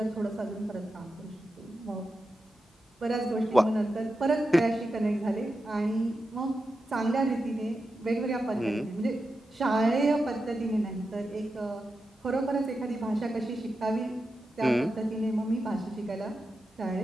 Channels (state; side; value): normal; both; correlation 0.89